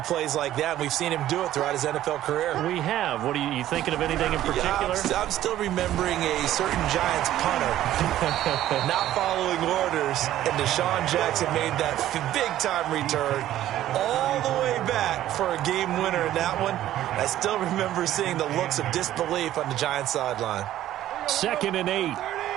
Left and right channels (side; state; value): left; quieter; 13.1 dB